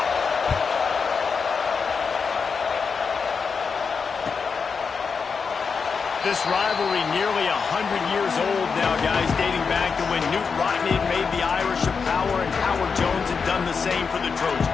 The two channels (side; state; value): right; quieter; 5.5 dB